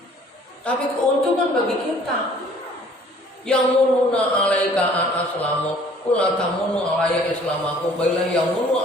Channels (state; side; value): normal; both; correlation 0.55